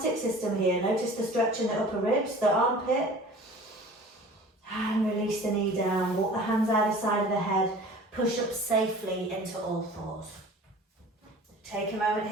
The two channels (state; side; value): normal; both; correlation 0.44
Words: system here. Notice the stretch in the upper ribs, the armpit. And release the knee down. Walk the hands either side of the head. Push up safely into all fours. Take a moment